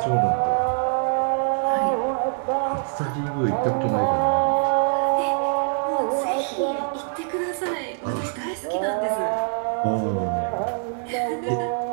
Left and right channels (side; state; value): left; silent; digital silence